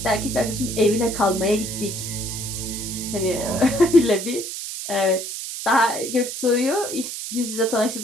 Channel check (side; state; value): right; noise; hiss, 7 dB below the sound